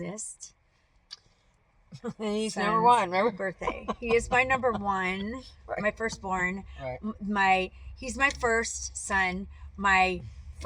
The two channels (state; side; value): identical; both; correlation 1.00